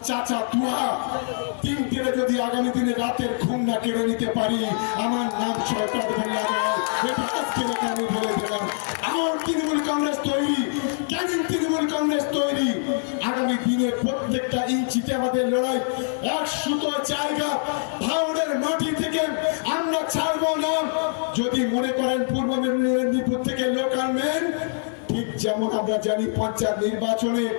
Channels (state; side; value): silent; right; 62 dB below the other